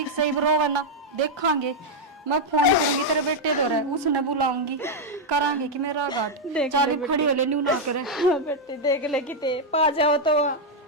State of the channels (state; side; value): normal; both; correlation 0.00